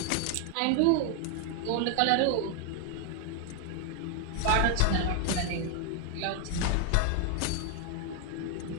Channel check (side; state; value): both; different; correlation 0.00